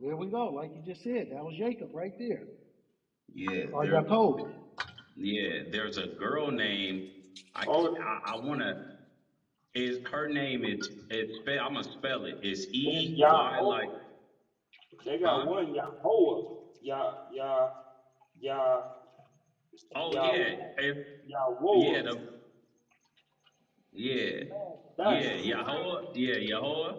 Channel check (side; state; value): both; identical; correlation 1.00